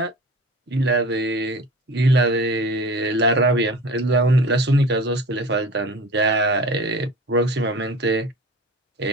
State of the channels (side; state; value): both; normal; correlation 0.36